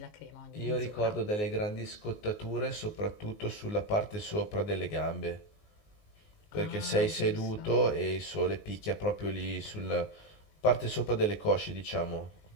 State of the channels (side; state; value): right; late; 19 ms